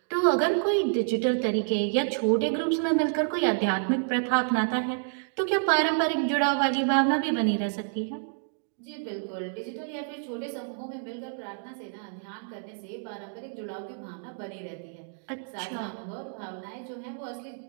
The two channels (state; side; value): silent; left; digital silence